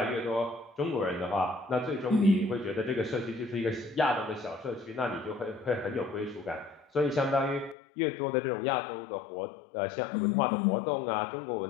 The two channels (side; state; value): right; drops out; at 7.8 s